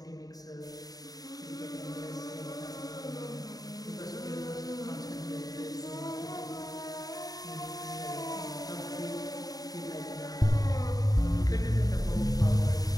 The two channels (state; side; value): late; right; 0.18 ms